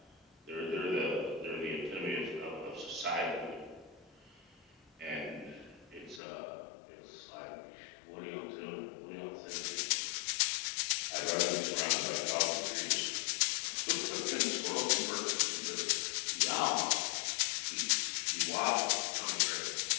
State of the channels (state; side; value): drops out; right; at 6.2 s